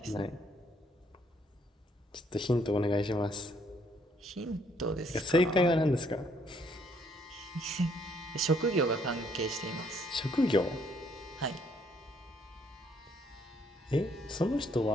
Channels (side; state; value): both; normal; correlation 0.68